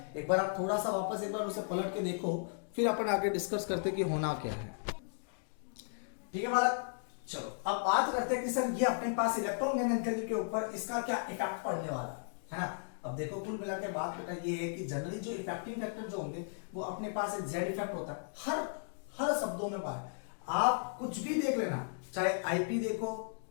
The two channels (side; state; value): right; silent; digital silence